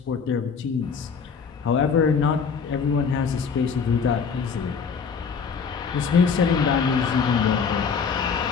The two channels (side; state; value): right; quieter; 6.0 dB